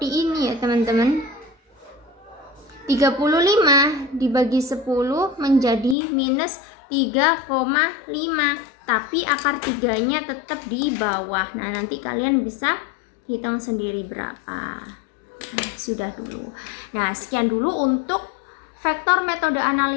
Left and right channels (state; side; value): drops out; right; at 6.0 s